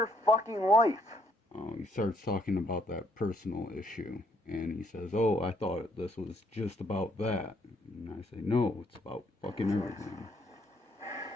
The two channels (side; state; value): both; normal; correlation 0.70